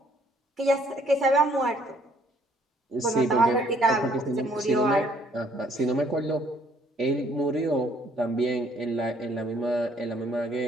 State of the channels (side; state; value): both; normal; correlation 0.63